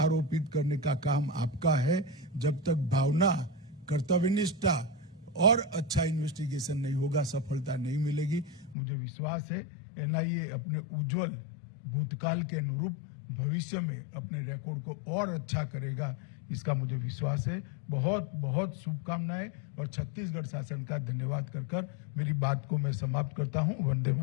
करने का काम आपका है। जब तक भावना, कर्तव्यनिष्ठा और अच्छा इन्वेस्टिगेशन नहीं होगा, सफलता नहीं मिलेगी। मुझे विश्वास है एनआईए अपने उज्जवल भूतकाल के अनुरूप भविष्य में अपने रिकॉर्ड को और अच्छा करेगा, इसका मुझे विश्वास है। बहुत बहुत शुभकामनाएं और छत्तीसगढ़ शासन का धन्यवाद कर मेरी बात को मैं समाप्त करता हूं। वंदे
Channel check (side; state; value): right; drops out; at 8.8 s